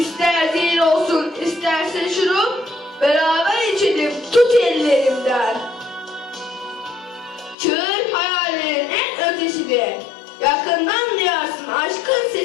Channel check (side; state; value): right; drops out; at 7.6 s